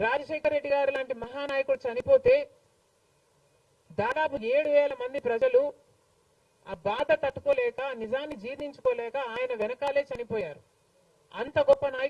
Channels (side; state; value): both; identical; correlation 1.00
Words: రెడ్డి గారు లాంటి మహానాయకుడు చనిపోతే దాదాపు 7,000 మంది ప్రజలు ఆ బాధ తట్టుకోలేక, నిజాన్ని జీర్ణించుకోలేక ఆయన వెనకాలే చనిపోయారు. అంత గొప్ప